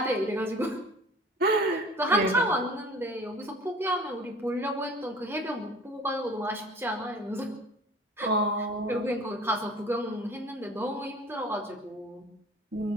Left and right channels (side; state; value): both; normal; correlation 0.44